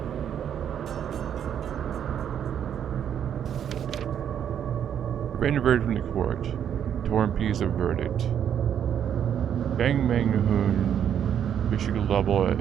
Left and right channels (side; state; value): left; quieter; 9.1 dB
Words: Written verdict from the court. Torn piece of verdict. Bang Manghoon, Michigan level